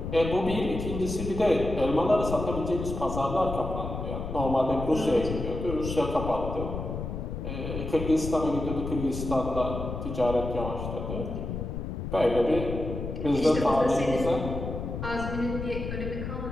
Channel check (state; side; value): noise; left; rumble, 5 dB below the sound